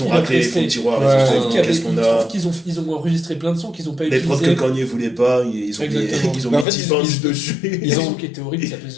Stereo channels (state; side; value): drops out; right; at 6.7 s